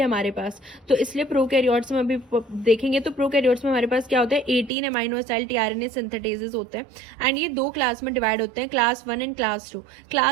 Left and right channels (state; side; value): drops out; left; at 4.7 s